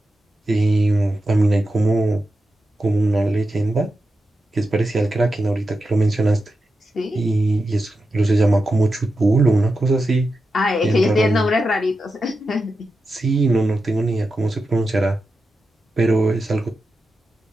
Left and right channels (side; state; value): both; normal; correlation 0.90